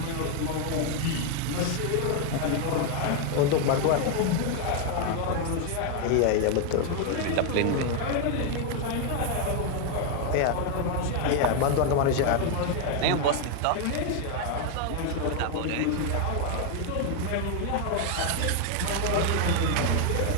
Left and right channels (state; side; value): different; both; correlation 0.01